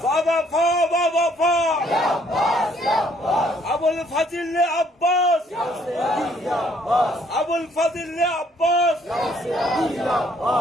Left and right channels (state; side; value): normal; both; correlation 0.65